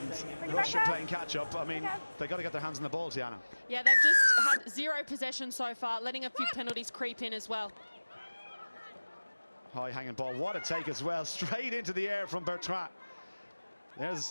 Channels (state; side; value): inverted; both; correlation -1.00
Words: Russia playing catch-up. I mean, they got to get their hands on the ball, Tiana. Yeah, they've just had 0 possession so far, letting a few penalties creep in as well. High hanging ball, what a take as well, straight into the air from Bertrand.